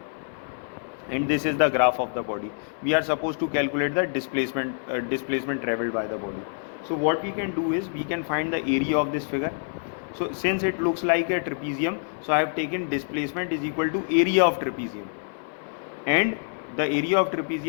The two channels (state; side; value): silent; right; 61 dB below the other